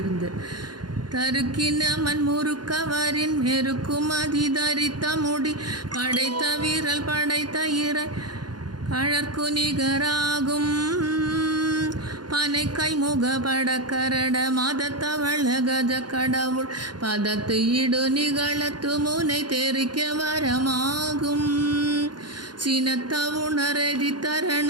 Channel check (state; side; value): late; left; 0.70 ms